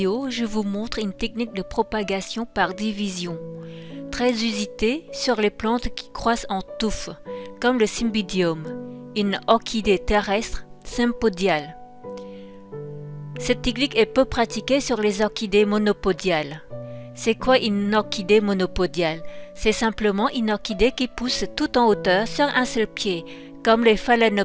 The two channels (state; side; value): identical; both; correlation 1.00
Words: je vous montre une technique de propagation par division, très usitée sur les plantes qui croissent en touffes, comme le Cymbidium, une orchidée terrestre sympodiale. Cette technique est peu pratiquée sur les orchidées monopodiales. C'est quoi une orchidée monopodiale? C'est simplement une orchidée qui pousse tout en hauteur sur un seul pied, comme les